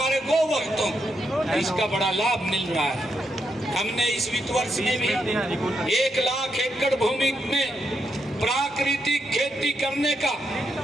गोवंशों को इसका बड़ा लाभ मिल रहा है। हमने इस वित्त वर्ष में भी 1 लाख एकड़ भूमि में प्राकृतिक खेती करने का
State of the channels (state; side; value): normal; both; correlation 0.81